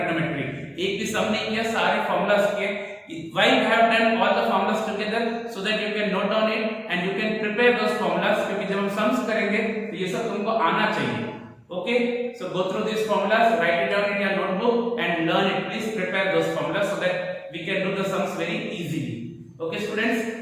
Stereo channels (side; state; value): both; identical; correlation 1.00